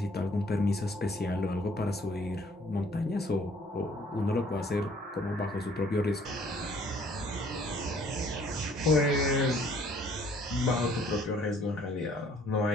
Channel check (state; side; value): normal; both; correlation 0.59